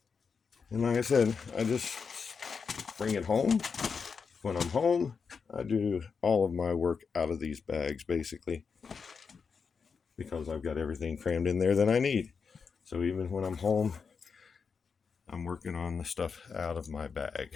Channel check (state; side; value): quieter; right; 5.6 dB